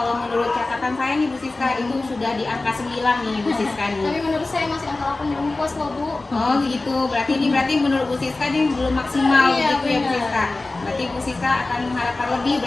menurut catatan saya nih Bu Siska itu sudah di angka 9 nih Bu Siska nih. Tapi menurut saya masih angka 8 belum puas loh Bu. Oh gitu, berarti menurut Bu Siska ini belum maksimal Iya, gitu ya Bu benar. Siska. Berarti Bu Siska akan mengharapkan lebih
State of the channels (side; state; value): right; quieter; 3.2 dB